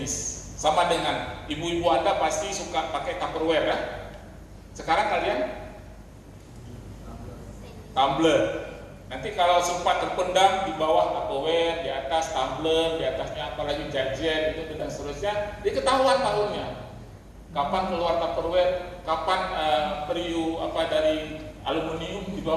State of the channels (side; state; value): both; identical; correlation 1.00